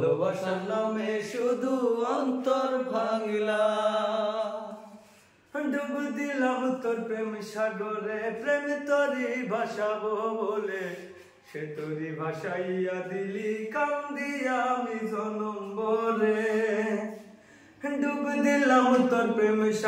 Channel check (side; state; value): both; identical; correlation 1.00